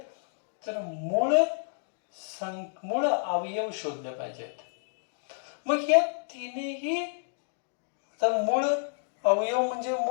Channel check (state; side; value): silent; right; digital silence